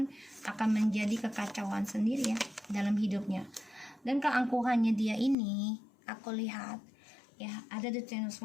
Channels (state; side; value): drops out; right; at 5.4 s